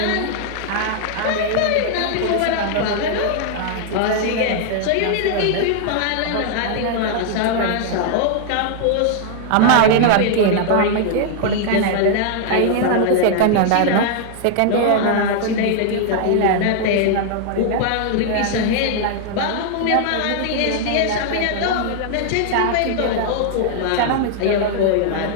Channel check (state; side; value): different; both; correlation -0.01